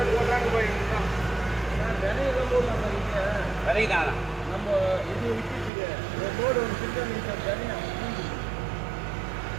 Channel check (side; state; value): left; drops out; at 5.7 s